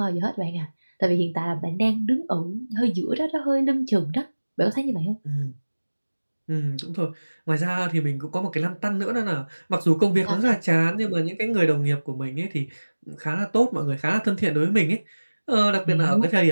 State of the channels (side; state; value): both; inverted; correlation -1.00